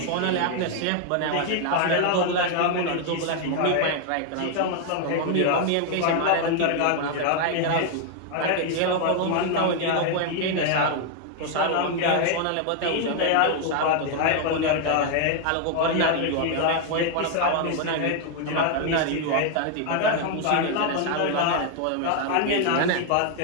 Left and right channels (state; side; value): different; both; correlation 0.00